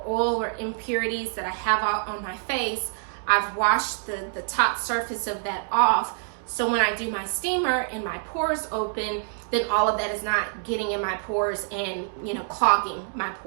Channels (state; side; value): silent; left; digital silence